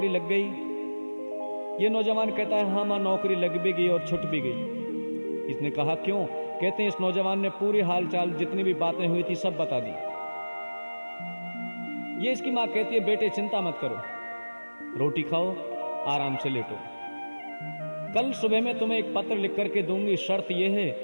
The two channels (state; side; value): inverted; both; correlation -1.00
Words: लग गई। ये नौजवान कहता है, हाँ मां नौकरी लग भी गई और छुट भी गई। इसने कहा, क्यों। कहते हैं इस नौजवान ने पूरी हालचाल जितनी भी बातें हुई थी सब बता दी। ये इसकी मां कहती है, बेटे चिंता मत करो, रोटी खाओ, आराम से लेटो। कल सुबह में तुम्हें एक पत्र लिख करके दूंगी, शर्त यह है